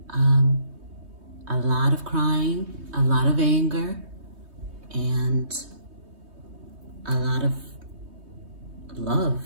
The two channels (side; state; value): left; late; 3.2 ms